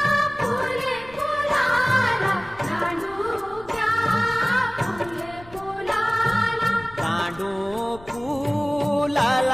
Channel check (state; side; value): noise; left; rumble, 21 dB below the sound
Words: फूल फुलाला, दांडू क्या फूल फुलाला, दांडू